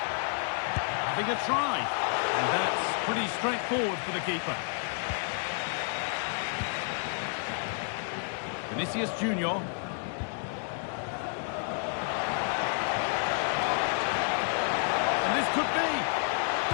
Having a try. And that's pretty straightforward for the keeper. Vinicius Junior. And this could be.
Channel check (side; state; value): right; silent; 58 dB below the other